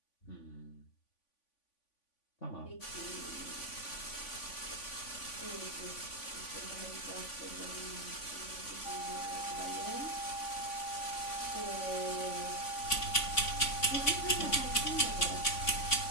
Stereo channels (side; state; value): right; late; 3.5 ms